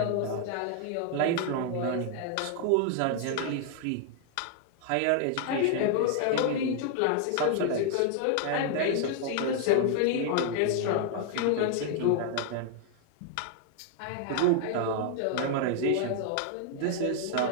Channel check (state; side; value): different; both; correlation 0.00